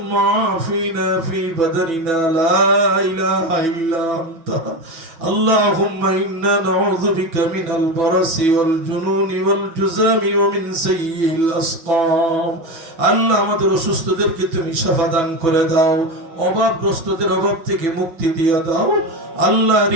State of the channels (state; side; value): late; left; 6.1 ms